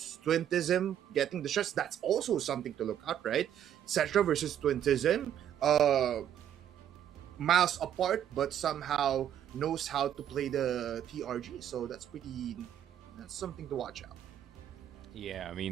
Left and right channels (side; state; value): left; quieter; 10.2 dB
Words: Twintism, getting the shots. That's also something to look at, right? Cetra versus Twintism. Miles apart, but somehow knows how to play the TRG. So that's something to watch out. Yeah, I